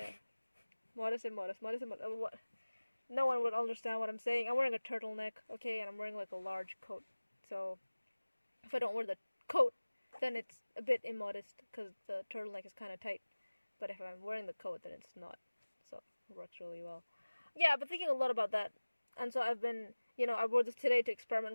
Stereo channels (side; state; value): both; inverted; correlation -1.00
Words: Modest and modest. What? No one would understand what I'm saying. I'm wearing a turtleneck, okay, and I'm wearing like a large coat. So if I don't wear the coat, then it's a bit immodest because the turtleneck is kind of tight. But if I'm wearing the coat, then it's not. So it works really well. Yeah, I've been thinking a lot about that. And so I've been, I wore this today to